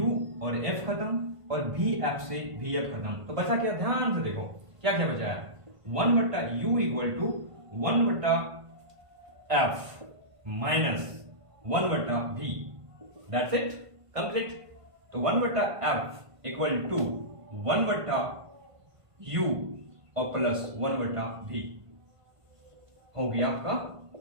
और F खत्म, और VF से VF खत्म, तो बचा क्या, ध्यान से देखो क्या बचा है, 1 बट्टा U इक्वल टू 1 बट्टा F माइनस 1 बट्टा V, दैट्स इट, कंप्लीट। तो 1 बट्टा F इक्वल टू 1 बट्टा U और प्लस 1 बट्टा V हो गया आपका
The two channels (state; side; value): late; left; 1.5 ms